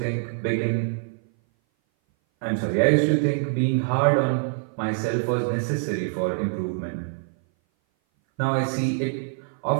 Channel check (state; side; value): silent; left; 58 dB below the other